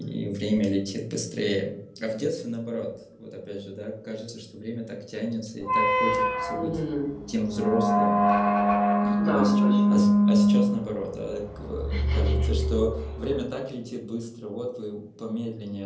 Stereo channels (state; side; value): identical; both; correlation 1.00